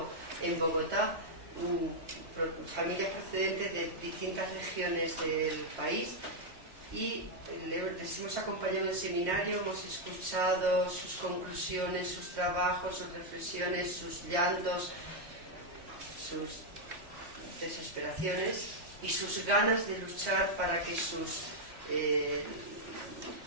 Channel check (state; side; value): late; left; 3.2 ms